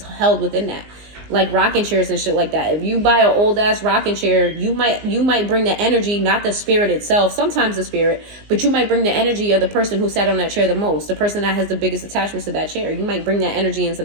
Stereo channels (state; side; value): late; left; 19 ms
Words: held within that. Like rocking chairs and shit like that. If you buy an old-ass rocking chair, you might bring the energy, not the spirit itself, sometimes the spirit, but you might bring the energy of the person who sat on that chair the most, the person that has the biggest attachments to that chair. You might bring that energy into